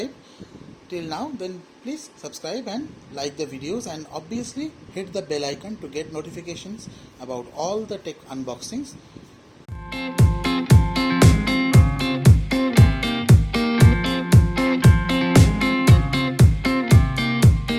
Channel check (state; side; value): identical; both; correlation 1.00